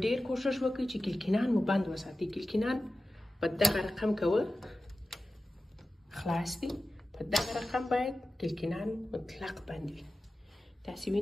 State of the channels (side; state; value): both; normal; correlation 0.95